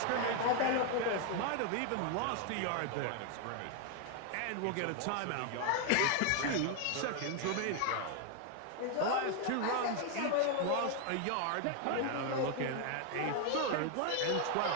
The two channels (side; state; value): both; different; correlation 0.00